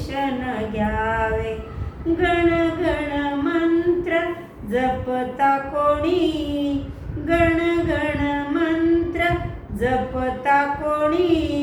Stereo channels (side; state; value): both; identical; correlation 1.00